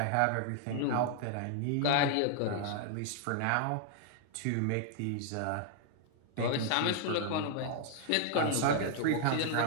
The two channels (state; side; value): different; both; correlation 0.00